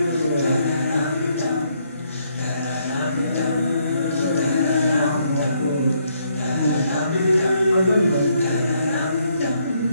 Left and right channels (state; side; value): inverted; both; correlation -0.72